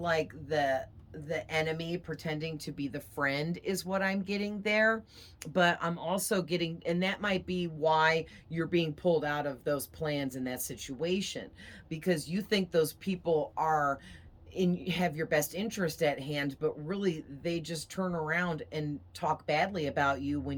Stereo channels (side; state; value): both; identical; correlation 1.00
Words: the enemy pretending to be the friend is what I'm getting there. But I'm also getting, and that might be why you're being pulled out of those plans in that situation, because you think those people are have your best interest at hand, but really they just turn around and talk badly about you